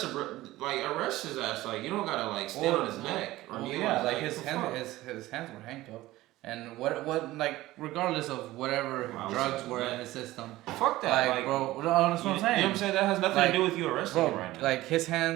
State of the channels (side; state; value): left; quieter; 17.1 dB